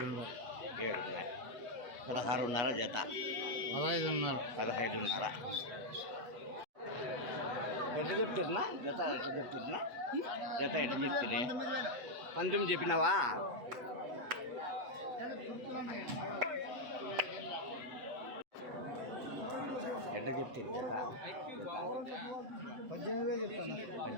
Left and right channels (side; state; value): left; late; 8.2 ms